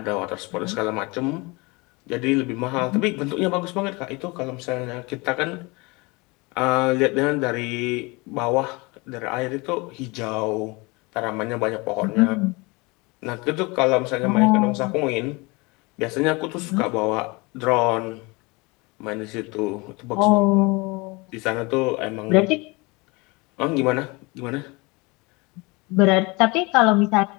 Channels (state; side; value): quieter; right; 25.9 dB